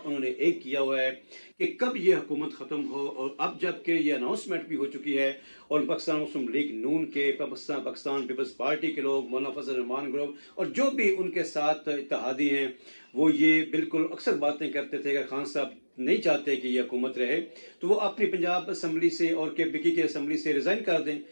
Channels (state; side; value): inverted; both; correlation -1.00